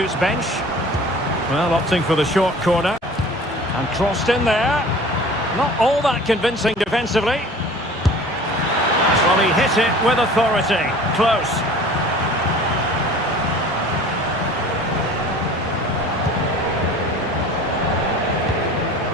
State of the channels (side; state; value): both; normal; correlation 0.44